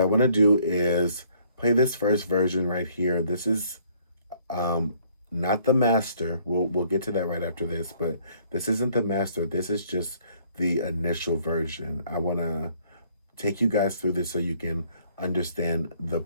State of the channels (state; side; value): inverted; both; correlation -0.63